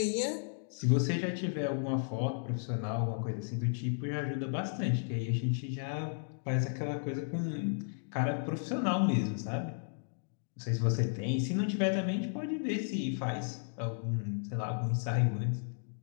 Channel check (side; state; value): right; silent; digital silence